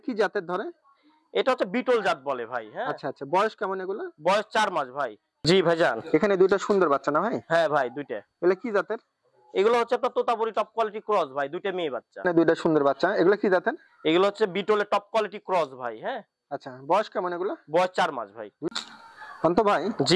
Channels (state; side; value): identical; both; correlation 1.00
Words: কি জাতের ধরে? এটা হচ্ছে বিটল জাত বলে ভাই। হ্যাঁ, আচ্ছা আচ্ছা, বয়স কেমন এগুলো? বয়স 4 মাস ভাই। জি ভাইজান। এখানে দুটো সুন্দর বাচ্চা না ভাই? হ্যাঁ ভাই, দুইটা। এগুলো কি জাতের? এগুলো হচ্ছে আপনার তোতাপুরি টপ কোয়ালিটি ক্রস ভাই, দুইটা মেয়ে বাচ্চা। না, দুটো সুন্দর বাচ্চা, এগুলো কি জাতের? এগুলো হচ্ছে বিটলের টপ কোয়ালিটি ক্রস ভাই। হ্যাঁ। আচ্ছা, বয়স কেমন এগুলো? বয়স 4 মাস ভাই। অন্ত ভাই।